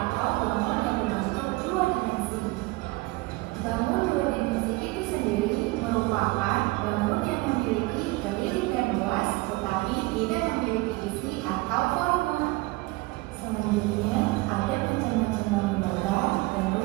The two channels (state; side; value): quieter; left; 22.4 dB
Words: bangun yang berbentuk dua dimensi. Bangun dua dimensi itu sendiri merupakan bangun yang memiliki keliling dan luas tetapi tidak memiliki isi atau volume. Selanjutnya ada macam-macam bangun datar dan